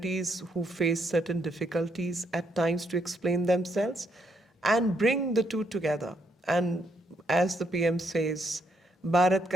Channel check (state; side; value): normal; both; correlation 0.75